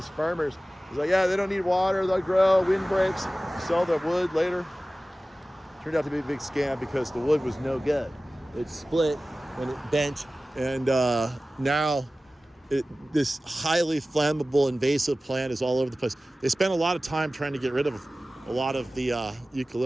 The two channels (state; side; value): normal; both; correlation 0.96